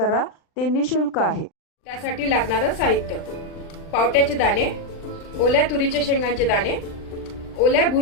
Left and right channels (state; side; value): late; right; 39 ms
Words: ते निशुल्क आहे। त्यासाठी लागणारे साहित्य: पावट्याचे दाणे, ओल्या तुरीच्या शेंगांचे दाणे, ओल्या